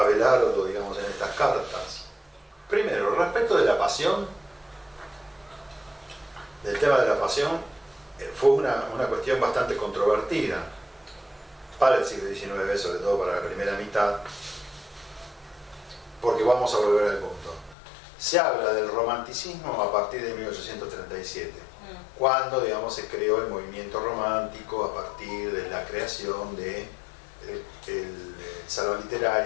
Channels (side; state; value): right; drops out; at 17.8 s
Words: digamos, en estas cartas. Primero, respecto de la pasión, del tema de la pasión, fue una cuestión bastante controvertida para el siglo XIX, sobre todo para la primera mitad, porque vamos a volver al punto. Se habla del romanticismo a partir de 1837, cuando, digamos, se creó el movimiento romántico a partir de la creación del salón